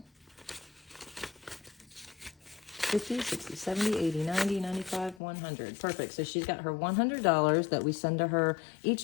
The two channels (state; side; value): drops out; right; at 5.2 s